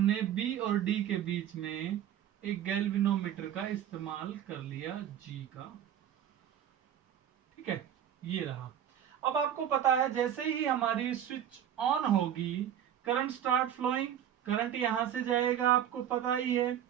बी और डी के बीच में एक गैल्वेनोमीटर का इस्तेमाल कर लिया, जी का। ठीक है, ये रहा। अब आपको पता है जैसे ही हमारी स्विच ऑन होगी करंट स्टार्ट फ्लोइंग, करंट यहां से जाएगा, आपको पता ही है।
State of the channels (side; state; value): left; quieter; 10.0 dB